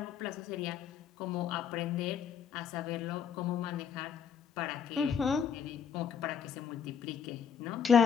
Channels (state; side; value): quieter; right; 7.5 dB